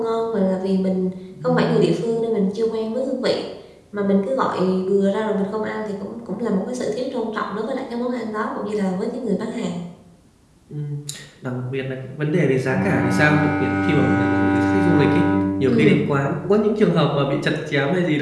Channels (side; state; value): both; identical; correlation 1.00